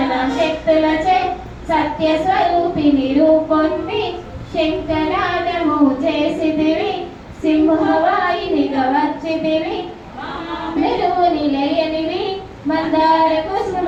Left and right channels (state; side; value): identical; both; correlation 1.00